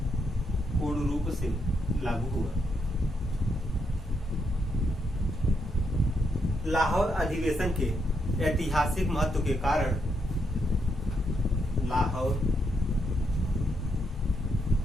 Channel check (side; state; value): both; normal; correlation 0.79